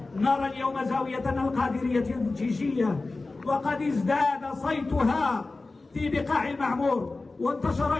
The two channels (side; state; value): right; quieter; 3.4 dB